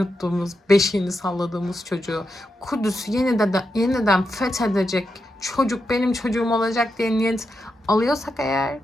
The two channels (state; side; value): normal; both; correlation 0.86